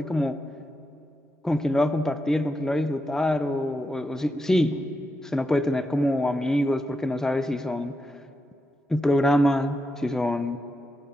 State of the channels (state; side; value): normal; both; correlation 0.86